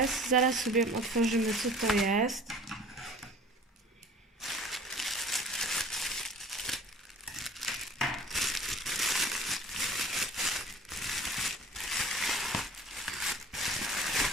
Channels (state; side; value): normal; both; correlation 0.45